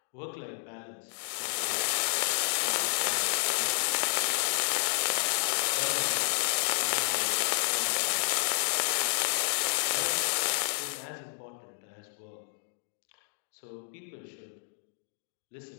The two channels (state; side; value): silent; right; digital silence